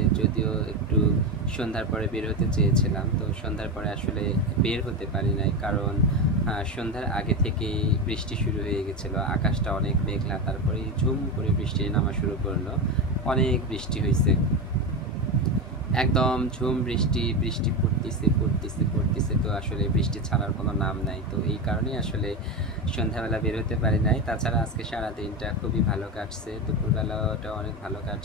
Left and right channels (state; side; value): normal; both; correlation 0.17